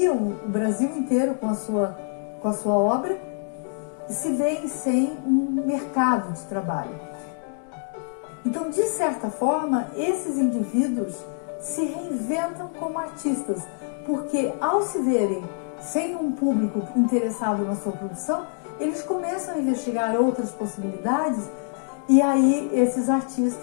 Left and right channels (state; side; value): silent; right; 62 dB below the other